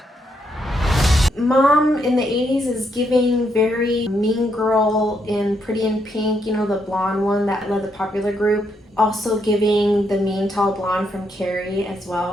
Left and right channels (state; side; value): normal; both; correlation 0.77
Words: Mom in the 80s is giving very Mean Girl in Pretty in Pink, you know, the blonde one that led the popular group. Also giving the mean tall blonde from Carrie as